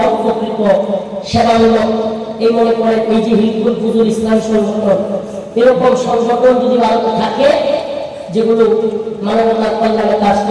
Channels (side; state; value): both; identical; correlation 1.00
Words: সেবামূলক, এই মনে করেন এই যে হিজবুল ফুজুল ইসলাম সংগঠন, এরকম সংগঠন যদি ভারতে থাকে, যেগুলো মানবতার কল্যাণে কাজ